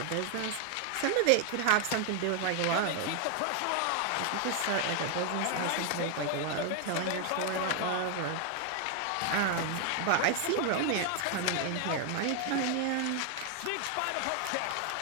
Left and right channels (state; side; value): different; both; correlation 0.00